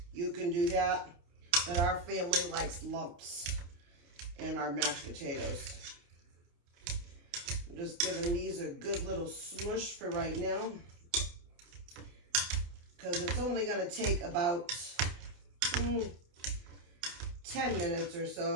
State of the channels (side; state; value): left; late; 29 ms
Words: you can do that. But our family likes lumps in our mashed potatoes. I'm just giving these a good little smush for right now, because it's only going to take about 10 minutes or